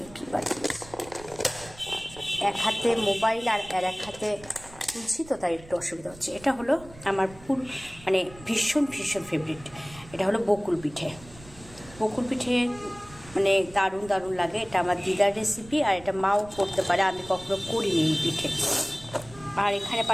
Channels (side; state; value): right; noise; rumble, 20 dB below the sound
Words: কি পাঠিয়েছে। এক হাতে মোবাইল আর এক হাতে তুলছি, তো তাই একটু অসুবিধা হচ্ছে। এটা হলো আমার মানে ভীষণ ভীষণ ফেভারিট, এটা হলো বকুল পিঠে। বকুল পিঠে মানে দারুণ দারুণ লাগে। এটা আমার দিদার রেসিপি, আর এটা মাও করতে পারে, আমি কখনো করিনি এই পিঠে। আর এখানে